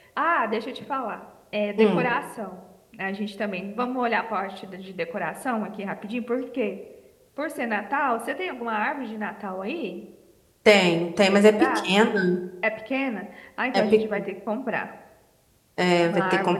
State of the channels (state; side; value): identical; both; correlation 1.00